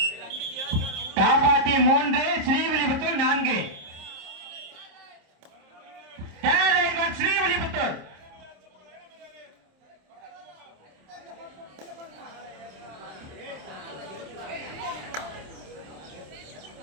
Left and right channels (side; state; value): left; late; 27 ms